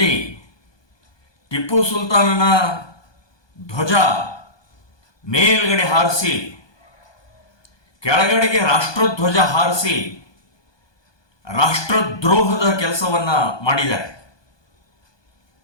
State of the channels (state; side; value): late; right; 1.2 ms